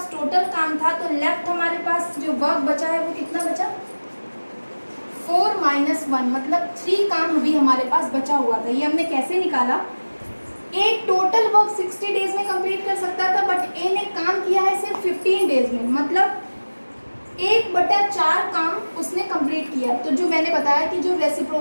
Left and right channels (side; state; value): both; inverted; correlation -1.00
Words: टोटल काम था, तो लेफ्ट हमारे पास जो वर्क बचा है वो कितना बचा, 4 - 1, मतलब 3 काम अभी हमारे पास बचा हुआ था। ये हमने कैसे निकाला, ए टोटल वर्क 60 डेज में कंप्लीट कर सकता था, बट ए ने काम किया है सिर्फ 15 डेज में, मतलब 1/4 काम उसने कंप्लीट किया। तो जो मैंने बताया कि जो